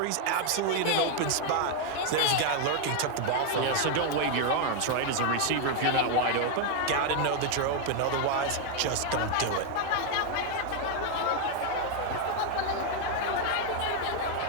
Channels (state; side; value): different; both; correlation 0.01